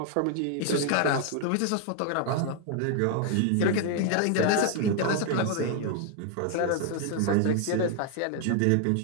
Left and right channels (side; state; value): both; different; correlation 0.00